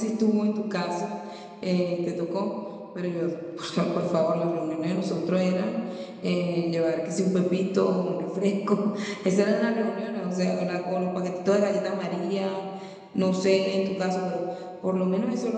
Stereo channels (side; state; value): both; identical; correlation 1.00